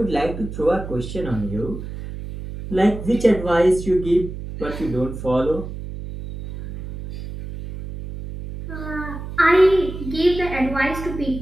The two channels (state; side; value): noise; right; hum, 9 dB below the sound